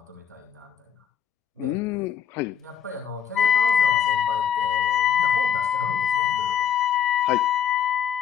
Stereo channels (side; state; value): right; quieter; 8.6 dB